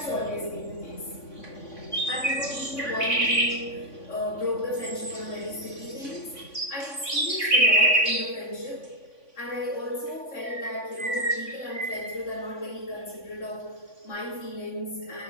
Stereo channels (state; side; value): late; right; 3.5 ms